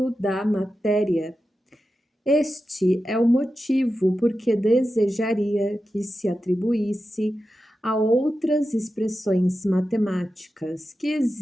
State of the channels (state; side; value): normal; both; correlation 0.91